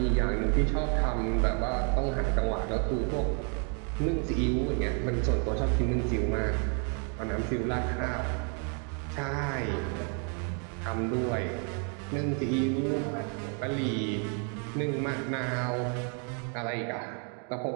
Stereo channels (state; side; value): quieter; left; 40.0 dB